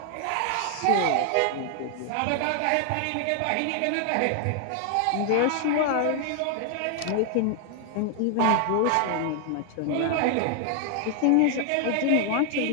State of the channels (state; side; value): different; both; correlation 0.00